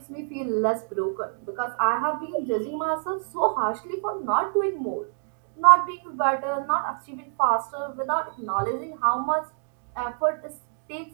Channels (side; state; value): left; silent; digital silence